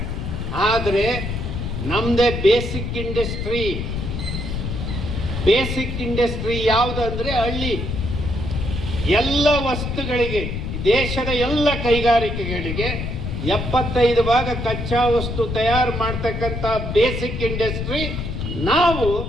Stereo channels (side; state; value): left; noise; rumble, 4 dB below the sound